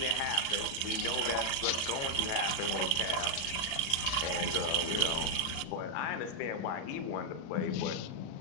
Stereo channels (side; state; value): right; late; 36 ms